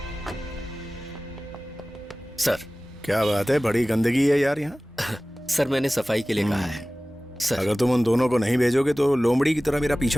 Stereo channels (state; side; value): normal; both; correlation 0.98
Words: सर। क्या बात है, बड़ी गंदगी है यार यहाँ। सर, मैंने सफाई के लिए कहा है। सर, अगर तुम उन दोनों को नहीं भेजोगे तो लोमड़ी की तरह मेरा